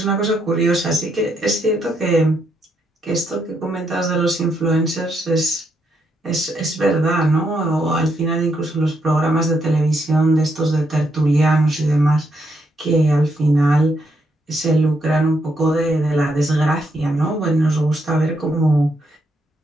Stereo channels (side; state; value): both; normal; correlation 0.77